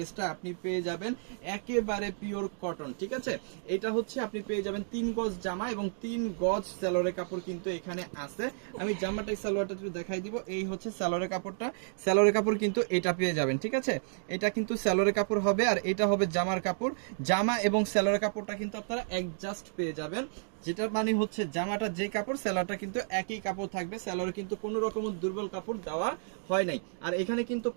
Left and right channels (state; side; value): silent; left; digital silence